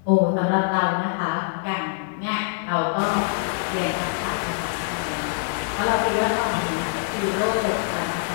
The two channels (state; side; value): silent; right; 62 dB below the other